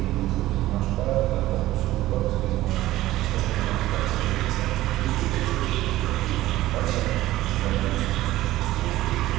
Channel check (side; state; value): left; quieter; 15.8 dB